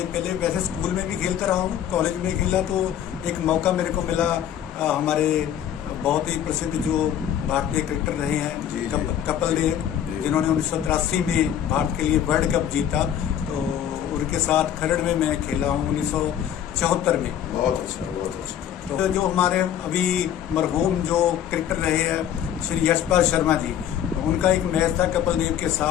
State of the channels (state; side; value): quieter; right; 10.1 dB